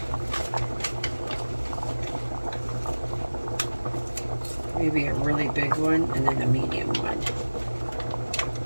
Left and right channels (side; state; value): both; inverted; correlation -1.00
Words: Maybe a really big one and then a medium one.